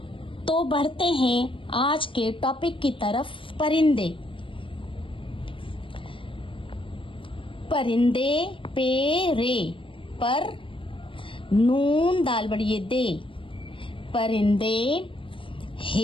तो बढ़ते हैं आज के टॉपिक की तरफ। परिंदे। परिंदे पे रे पर नून दाल बड़िए दे। परिंदे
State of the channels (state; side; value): late; right; 0.25 ms